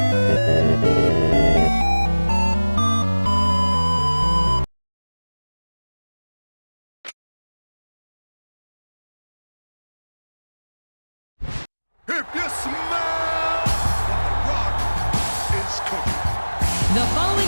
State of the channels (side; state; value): both; inverted; correlation -1.00